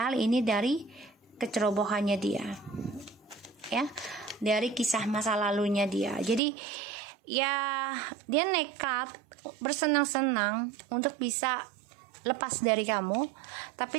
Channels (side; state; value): left; drops out; at 6.4 s